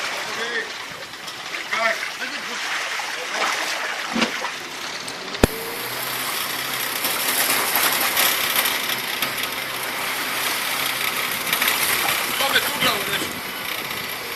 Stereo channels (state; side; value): identical; both; correlation 1.00